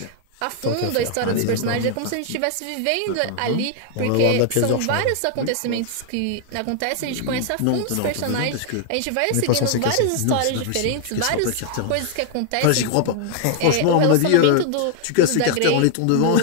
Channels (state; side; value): different; both; correlation 0.00